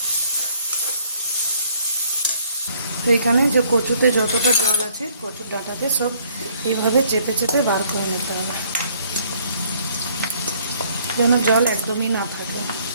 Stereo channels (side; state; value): both; inverted; correlation -0.62